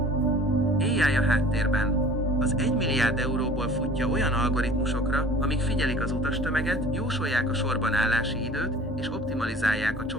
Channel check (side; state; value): both; normal; correlation 0.46